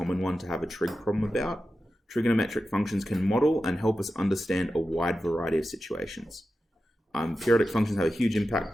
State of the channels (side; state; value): both; normal; correlation 0.92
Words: one to have a trig problem about. Trigonometric functions can model and help us understand a wide variety of situations. Periodic functions have a huge